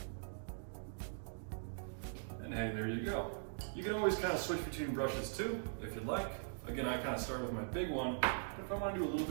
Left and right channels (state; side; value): silent; left; digital silence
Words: And hey, there you go. You can always kind of switch between brushes too, if you'd like. Again, I kind of start with my big one, but if I want to do a little